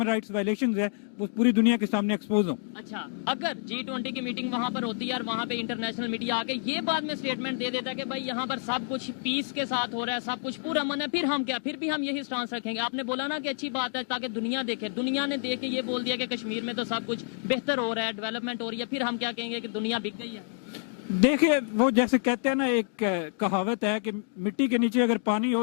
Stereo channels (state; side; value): silent; right; digital silence